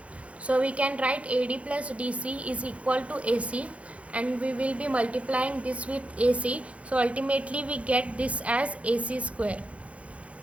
So we can write AD plus DC is equal to AC, and we will be multiplying this with AC. So ultimately we get this as AC square.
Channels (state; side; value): late; left; 0.063 ms